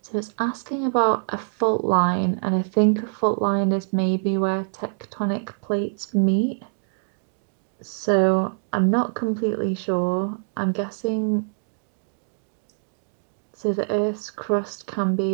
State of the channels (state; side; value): silent; left; digital silence